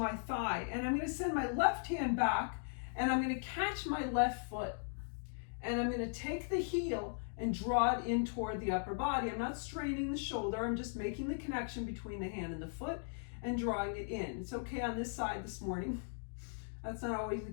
thigh and I'm going to send my left hand back and I'm going to catch my left foot. And I'm going to take the heel and draw it in toward the upper body. I'm not straining the shoulder, I'm just making the connection between the hand and the foot and drawing it in. It's okay on this side this morning. That's not always the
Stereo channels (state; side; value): silent; right; digital silence